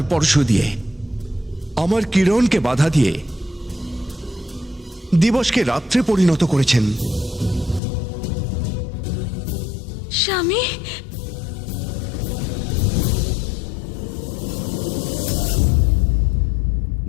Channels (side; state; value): right; drops out; at 7.8 s